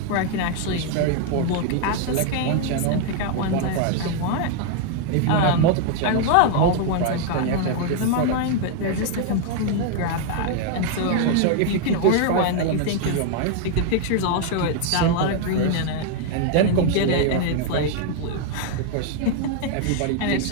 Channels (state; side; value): different; both; correlation 0.00